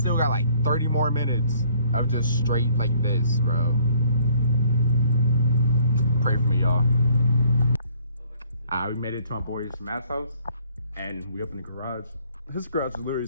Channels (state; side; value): inverted; both; correlation -0.61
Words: got like 30 more minutes of just straight like this, bro. Pray for me, y'all. We made it to my boy's Matt's house and we opened the garage. His garage is literally